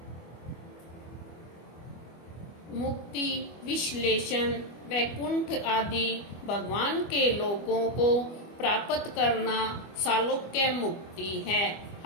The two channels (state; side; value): late; right; 25 ms